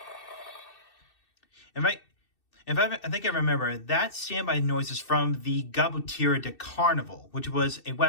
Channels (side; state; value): right; late; 2.6 ms